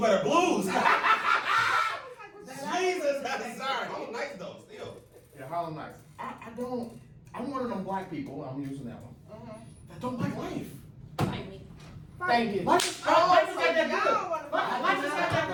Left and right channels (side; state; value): both; identical; correlation 1.00